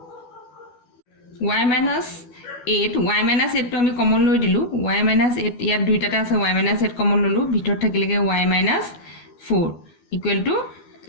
y minus 8 to আমি কমন লৈ দিলু y minus 8 ইয়াত দুইটাতে আছে y minus 8 কমন ললো ভিতৰ থাকিলেগে y minus 4 equal to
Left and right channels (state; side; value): late; right; 12 ms